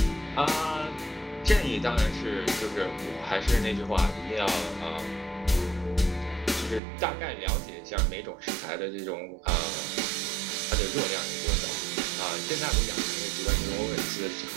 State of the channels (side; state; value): left; drops out; at 6.8 s